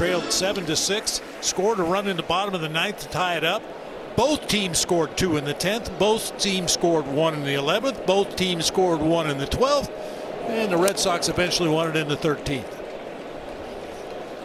7-6, scored a run in the bottom of the 9th to tie it up. Both teams scored 2 in the 10th. Both teams scored 1 in the 11th. Both teams scored 1 in the 12th. And the Red Sox eventually won it in the 13th.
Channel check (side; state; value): both; identical; correlation 1.00